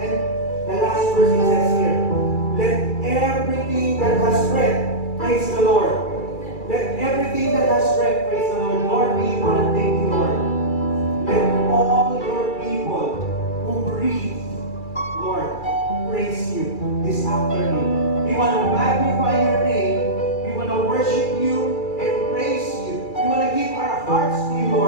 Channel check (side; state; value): right; late; 2.3 ms